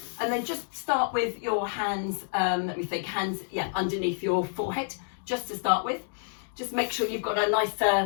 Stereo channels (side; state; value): right; silent; digital silence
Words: And then just start with your hands, hands underneath your forehead, just to start with. Just make sure you've got a nice